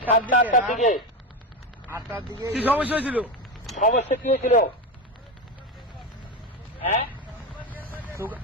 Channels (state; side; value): normal; both; correlation 0.17